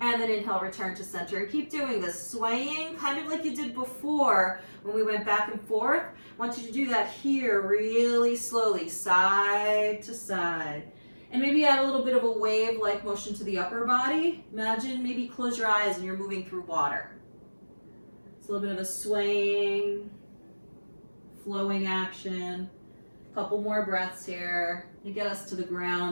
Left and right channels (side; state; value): both; inverted; correlation -1.00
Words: And then inhale, return to center. And keep doing this, swaying kind of like you did before when we went back and forth. I want you to do that here really slowly, side to side. And maybe add a little bit of a wave-like motion to the upper body. Imagine maybe close your eyes and you're moving through water. It's a little bit of a swaying, flowing action. Couple more breaths here to get us to the